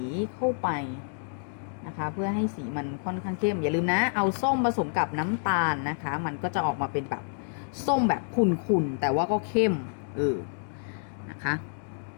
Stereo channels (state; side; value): silent; right; digital silence